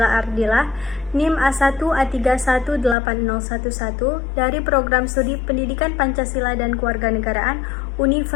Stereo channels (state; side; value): drops out; right; at 3.0 s